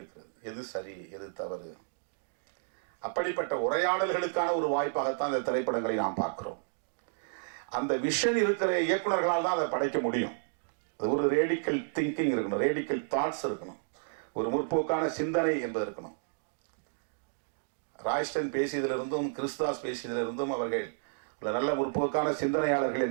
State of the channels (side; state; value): left; silent; digital silence